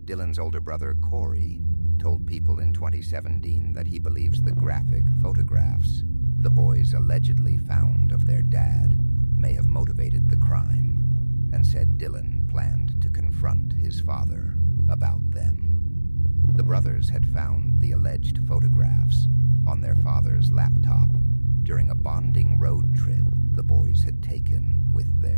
Dylan's older brother, Corey, told People in 2017 that he believes the graphic photographs the boys allegedly found of their dad may have motivated the crime, and said Dylan planned to confront his father about them. The brothers had found the alleged photographs on their father's laptop during a bonding road trip the boys had taken with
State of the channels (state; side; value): inverted; both; correlation -1.00